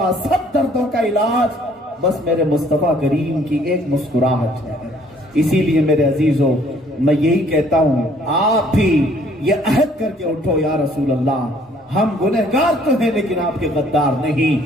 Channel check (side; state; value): both; normal; correlation 0.60